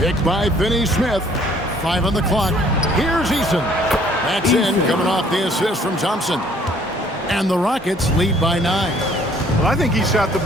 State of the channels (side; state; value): both; normal; correlation 0.59